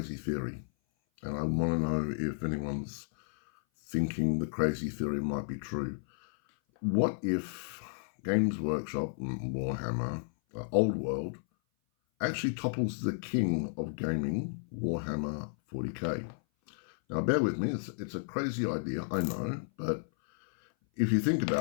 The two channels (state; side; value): silent; right; 56 dB below the other